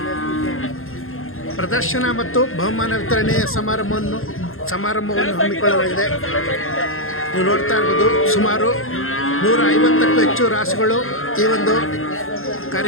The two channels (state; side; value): late; right; 0.61 ms